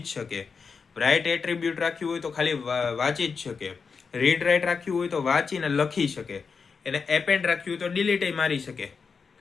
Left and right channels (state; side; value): quieter; right; 5.4 dB